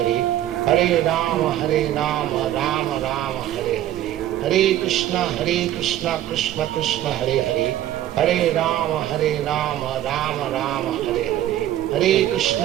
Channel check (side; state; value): left; quieter; 12.9 dB